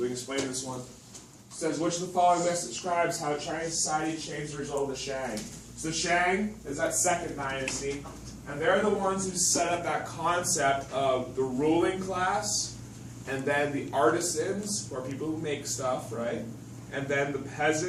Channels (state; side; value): identical; both; correlation 1.00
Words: we can explain this one. It says, which of the following best describes how Chinese society changed the result of the Shang? So Shang is that second dynasty, and they're the ones who set up that concept of the ruling class, and then the artisans, who are people who make stuff, right? And then the